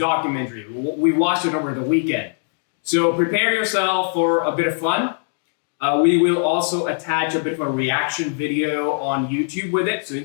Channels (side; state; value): right; silent; digital silence